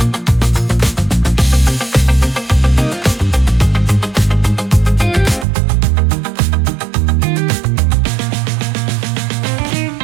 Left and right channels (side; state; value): left; drops out; at 5.5 s